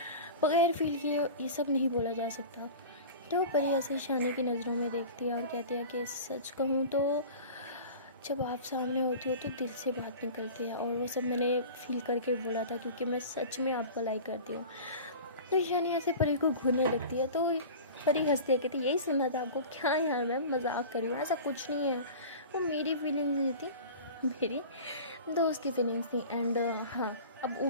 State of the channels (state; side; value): inverted; both; correlation -0.36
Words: बगैर फील किए ये सब नहीं बोला जा सकता। तो परी ऐसे ईशानी की नज़रों में देखती है और कहती है कि सच कहूँ तो जब आप सामने होती हो तो दिल से बात निकलती है और वो सब मैंने फील करके बोला था क्योंकि मैं सच में आपको लाइक करती हूँ। तो ईशानी ऐसे परी को घूरने लगती है। तो परी हंसती है, कहती यही सुनना था आपको, क्या यार मैं मजाक कर रही हूँ, ऐसा कुछ नहीं है, वो मेरी फीलिंग्स नहीं थी, मेरी दोस्त की फीलिंग्स थी एंड हाँ अब